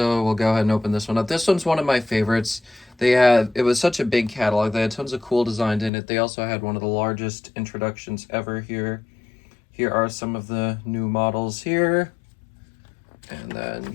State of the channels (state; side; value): drops out; right; at 5.9 s